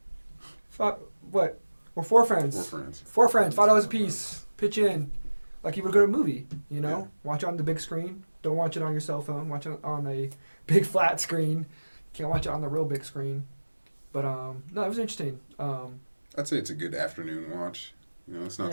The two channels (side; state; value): both; inverted; correlation -1.00